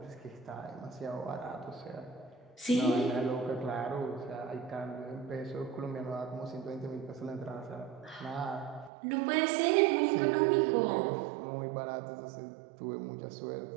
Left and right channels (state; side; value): drops out; left; at 8.9 s